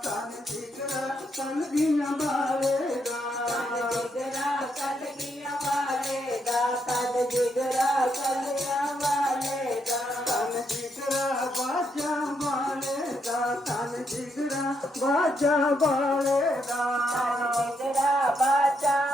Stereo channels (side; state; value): both; normal; correlation 0.78